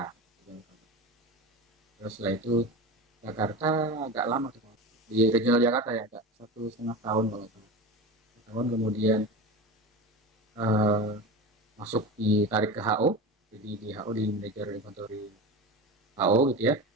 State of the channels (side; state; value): both; normal; correlation 0.28